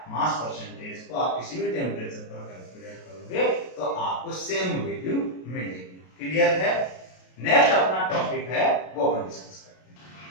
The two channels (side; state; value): right; late; 32 ms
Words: मास परसेंटेज को आप किसी भी टेम्परेचर पर कैलकुलेट करोगे तो आपको सेम वैल्यू मिलेगी। क्लियर है? नेक्स्ट अपना टॉपिक है वो अपन डिस्कस करते हैं।